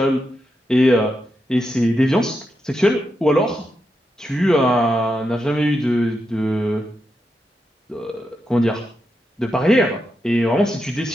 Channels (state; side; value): normal; both; correlation 0.85